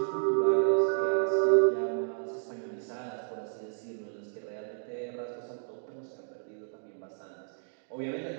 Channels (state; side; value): silent; left; digital silence